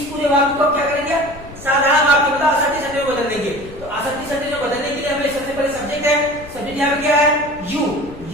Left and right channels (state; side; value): noise; left; rumble, 17 dB below the sound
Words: पूरे वाक्य को क्या करेंगे? साधारण वाक्य मतलब असर्टिव सेंटेंस में बदल देंगे। तो असर्टिव सेंटेंस में बदलने के लिए हमें सबसे पहले सब्जेक्ट है। सब्जेक्ट यहाँ पे क्या है? यू